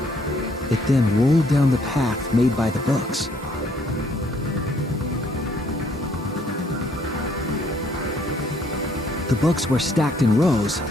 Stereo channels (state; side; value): normal; both; correlation 0.66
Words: It then rolled down the path made by the books. The books were stacked in rows